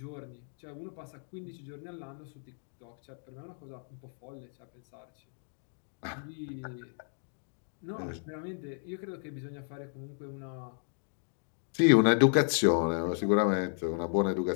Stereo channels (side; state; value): right; silent; 55 dB below the other